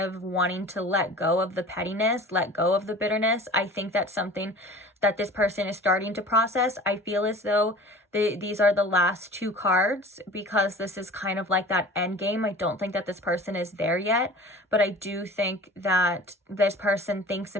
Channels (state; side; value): normal; both; correlation 0.41